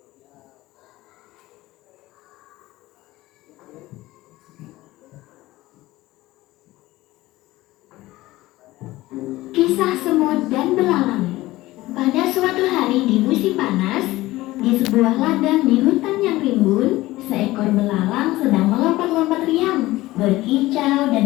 Kisah semut dan belalang. Pada suatu hari di musim panas, di sebuah ladang di hutan yang rimbun, seekor belalang sedang melompat-lompat riang, berkicau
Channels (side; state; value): right; quieter; 17.9 dB